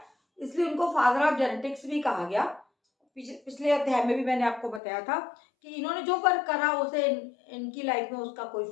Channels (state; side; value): drops out; right; at 4.8 s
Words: इसलिए उनको फादर ऑफ जेनेटिक्स भी कहा गया। पिछले अध्याय में भी मैंने आपको बताया था कि इन्होंने जो वर्क करा उसे इनकी लाइफ में उसका कोई